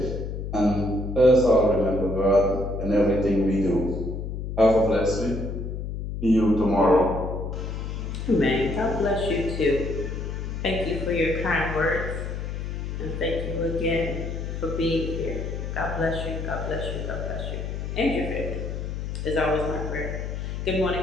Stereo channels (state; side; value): noise; left; hum, 5 dB below the sound